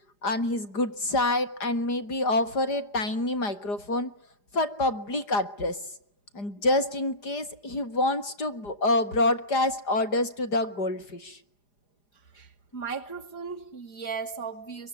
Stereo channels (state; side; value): late; right; 4.9 ms